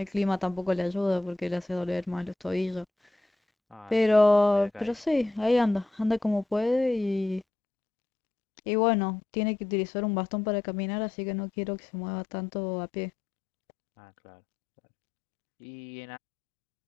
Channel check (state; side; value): drops out; right; at 7.5 s